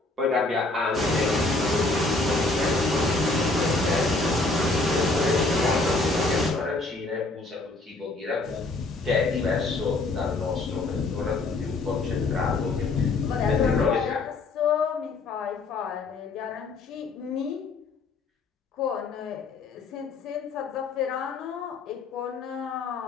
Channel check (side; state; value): right; quieter; 3.4 dB